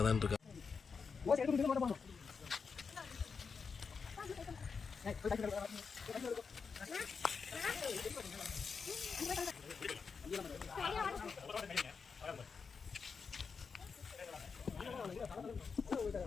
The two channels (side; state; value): right; quieter; 5.4 dB